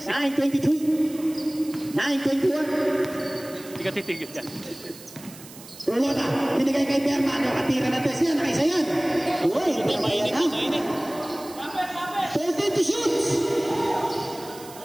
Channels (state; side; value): noise; right; hiss, 18 dB below the sound